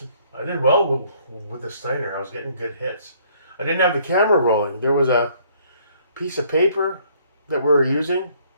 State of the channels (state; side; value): inverted; both; correlation -0.63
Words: did well with the Steiner. I was getting good hits. I didn't have the camera rolling. There was a piece of paper that we were using